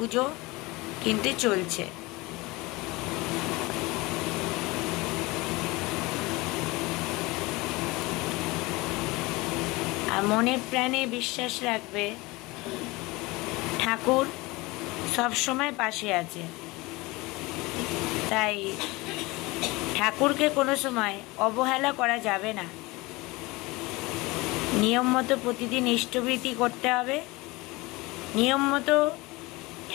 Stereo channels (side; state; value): right; quieter; 22.7 dB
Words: কিন্তু চলছে। আর মনে প্রাণে বিশ্বাস রাখবে ঠাকুর সবসময় পাশে আছে। তাই ঠাকুরকে কোনো সময় অবহেলা করা যাবে না। নিয়ম মতো প্রতিদিন ইষ্টবৃত্তি করতে হবে, নিয়ম মতো